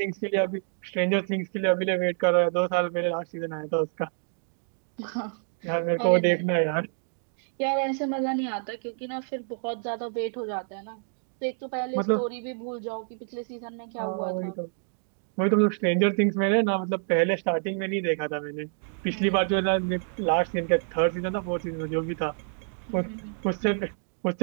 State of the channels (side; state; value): left; silent; 60 dB below the other